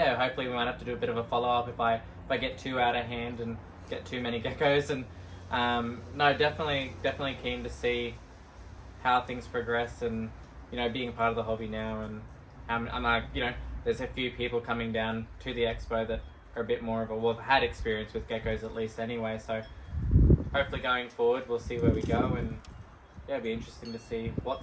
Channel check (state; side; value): identical; both; correlation 1.00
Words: hopefully we might have to do a bit of a follow-up if I get too out of hand and get too many geckos. And no, definitely keen to see how things progress, and you know, being part of the hobby now, and I'm like, you know, there's a few people coming down to the expo that are a bit more of have had experience with geckos at least anyway, so hopefully going forward we'll see where we go, and yeah, it'll be interesting to see